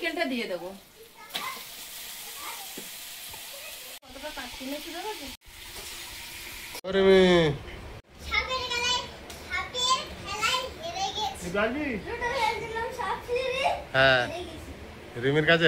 দিয়ে দেবো। কতটা কাটছি না শুধু দেখো। ওরে মেয়ে, হ্যাঁ রিমির কাছে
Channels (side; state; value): both; identical; correlation 1.00